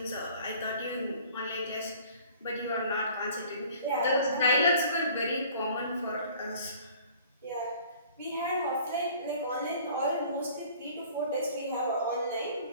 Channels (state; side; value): inverted; both; correlation -0.50